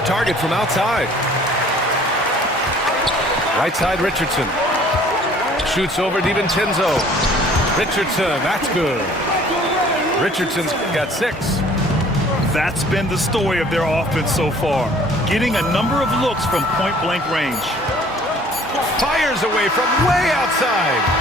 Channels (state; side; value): normal; both; correlation 0.54